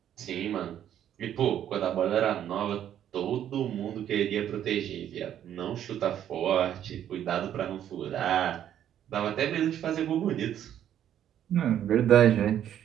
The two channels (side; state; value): left; quieter; 10.5 dB